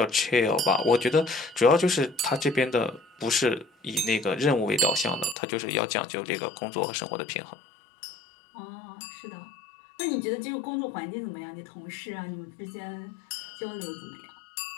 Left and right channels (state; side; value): drops out; right; at 5.4 s